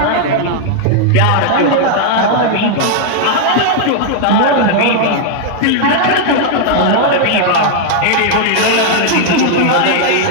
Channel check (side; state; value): both; different; correlation 0.00